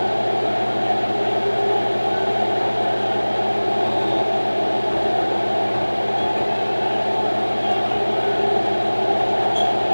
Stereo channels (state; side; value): inverted; both; correlation -1.00